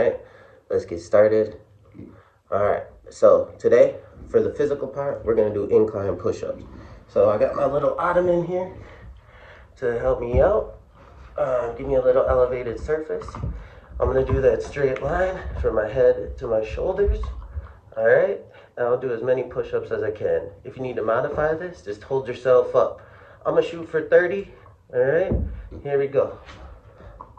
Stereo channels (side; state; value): both; identical; correlation 1.00